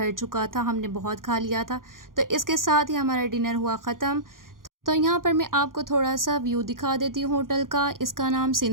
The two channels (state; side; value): late; left; 0.90 ms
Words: चुका था, हमने बहुत खा लिया था। तो इसके साथ ही हमारा डिनर हुआ ख़त्म। तो यहाँ पर मैं आपको थोड़ा सा व्यू दिखा देती हूँ होटल का। इसका नाम